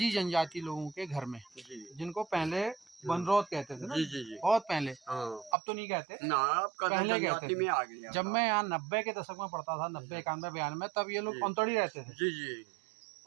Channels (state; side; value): drops out; left; at 5.6 s